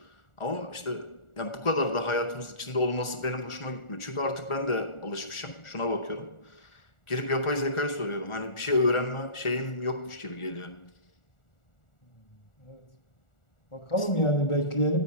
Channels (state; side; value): late; right; 1.4 ms